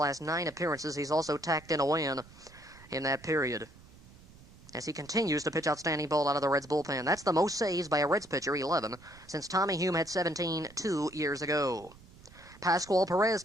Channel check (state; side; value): noise; right; rumble, 22 dB below the sound